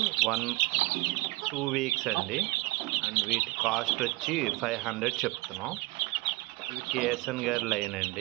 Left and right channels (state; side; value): quieter; left; 21.4 dB